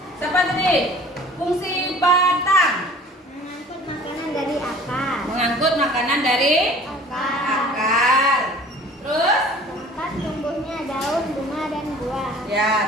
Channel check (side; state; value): both; normal; correlation 0.48